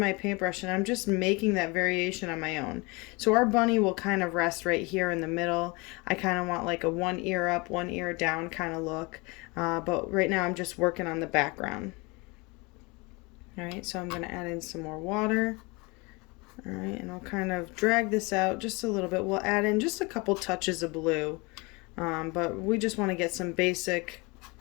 paintbrush and I'm just making that variation on my own. So our bunny will kind of rest right here in the middle. I kind of want like a one ear up, one ear down kind of look, but right now I'm just working on the background. All right, so I'm going to add in some more water. All right, and I'll kind of drag this out just a little bit. We'll add in just a couple touches of blue, but we just want to get some basic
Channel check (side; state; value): right; quieter; 27.0 dB